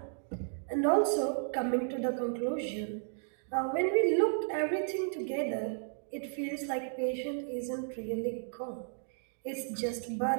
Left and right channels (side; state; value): left; silent; digital silence